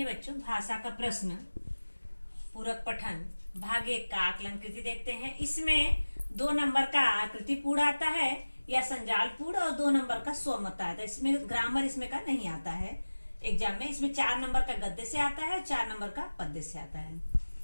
बच्चों, भाषा का प्रश्न पूरक पठन भाग 1 का आकलन कृति देखते हैं। इसमें 2 नंबर का आकृति पूर्ण आता है या संजाल पूर्ण, और 2 नंबर का स्वमत आता है। इसमें ग्रामर इसमें का नहीं आता है एग्जाम में। इसमें 4 नंबर का गद्य से आता है, 4 नंबर का पद्य से आता है,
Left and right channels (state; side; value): inverted; both; correlation -1.00